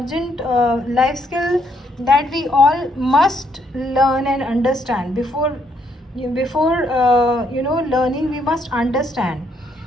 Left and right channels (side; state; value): both; normal; correlation 0.72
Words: life skill that we all must learn and understand. Before learning, we must understand.